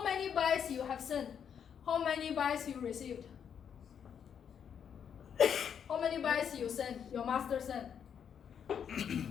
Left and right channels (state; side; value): quieter; right; 7.9 dB